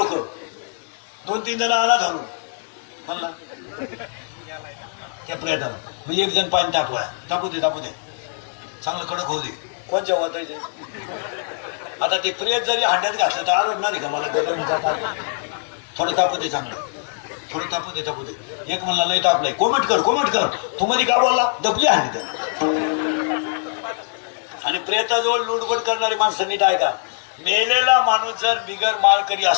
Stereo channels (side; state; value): right; silent; digital silence